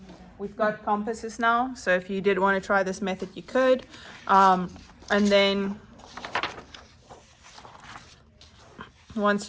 We've got compasses now, so if you did want to try this method, you could. And then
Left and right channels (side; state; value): both; identical; correlation 1.00